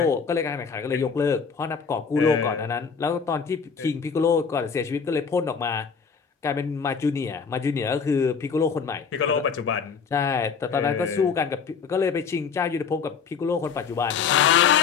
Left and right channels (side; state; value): right; quieter; 6.0 dB